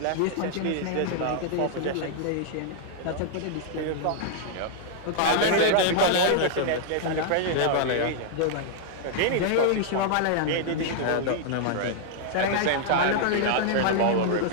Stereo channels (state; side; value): different; both; correlation -0.01